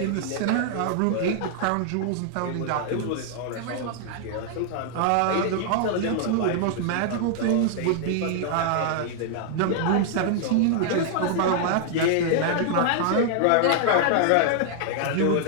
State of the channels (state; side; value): different; both; correlation -0.01